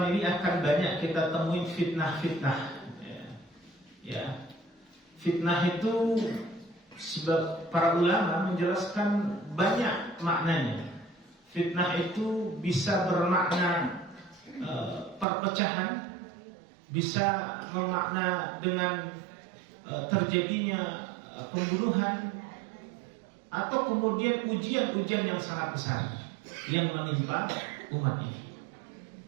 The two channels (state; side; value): drops out; left; at 15.2 s